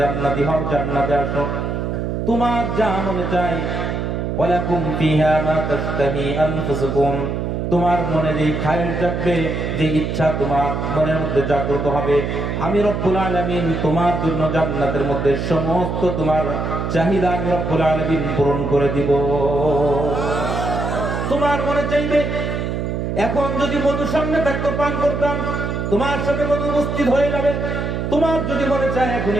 জান্নাতি হও, জান্নাতে আসো, তোমার যা মনে চায় ওয়ালাকুম ফিহা মা তাশতাহি আনফুসুকুম, তোমার মনে যেই খায়ের জাগবে, যে ইচ্ছা তোমার মনের মধ্যে জাগ্রত হবে, আমি রব্বুল আলামিন তোমার জন্য জান্নাতের মধ্যে সমস্ত তোমার চাহিদা আমি রব্বুল আলামিন পূরণ করে দিব। তোমার মনে চাইবে এখন যদি মধু সামনে থাকতো পান করতাম, তোমার সামনে মধু উপস্থিত হয়ে যাবে। তোমার যদি মনে চায় এখন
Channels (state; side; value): noise; right; hum, 2 dB below the sound